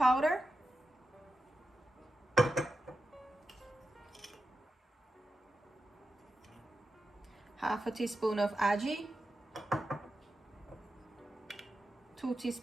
half a teaspoon of ajee, 2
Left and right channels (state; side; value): normal; both; correlation 0.90